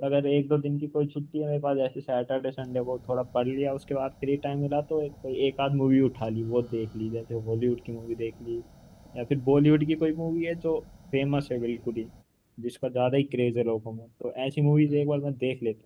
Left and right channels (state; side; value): identical; both; correlation 1.00